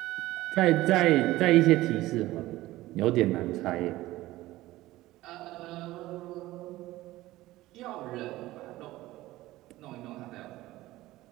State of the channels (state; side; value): quieter; left; 17.1 dB